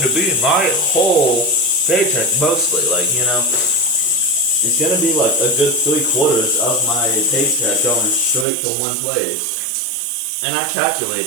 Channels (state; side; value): drops out; left; at 8.5 s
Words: to be my whole paycheck mostly, like, you know. It's going to be like a good 3/4 of my paycheck going straight to one place. And I